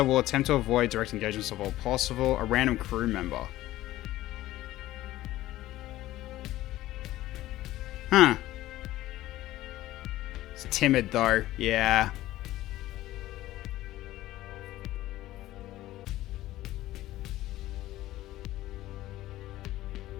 will attempt to avoid direct engagements of all possible. A random crew member. Huh. It's timid, though. Yeah.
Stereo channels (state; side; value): quieter; right; 15.6 dB